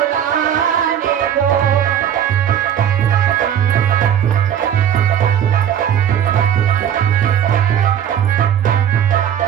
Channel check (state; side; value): quieter; left; 9.6 dB